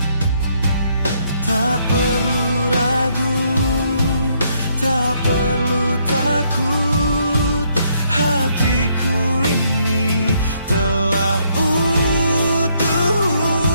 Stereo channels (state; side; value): inverted; both; correlation -0.71